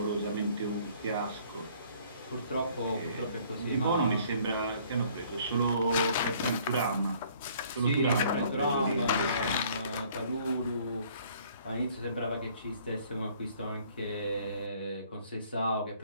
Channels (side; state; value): both; inverted; correlation -0.58